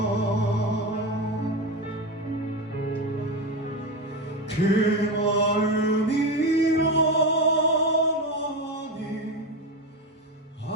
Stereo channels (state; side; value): normal; both; correlation 0.17